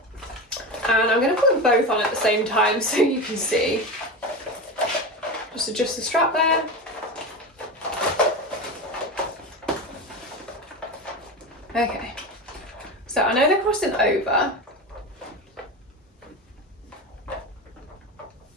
And I'm going to put them both on at the same time so you can see. Just adjust the strap there. Okay, so I know they're crossing over,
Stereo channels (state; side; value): normal; both; correlation 0.23